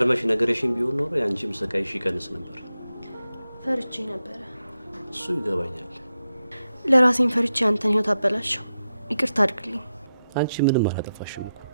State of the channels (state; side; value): inverted; both; correlation -0.89